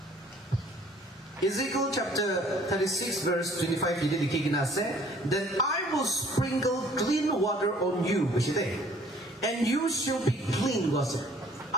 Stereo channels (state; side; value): normal; both; correlation 0.56